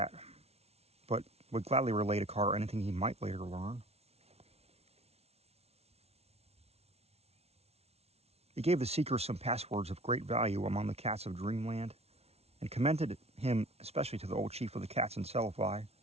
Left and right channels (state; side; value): late; left; 0.30 ms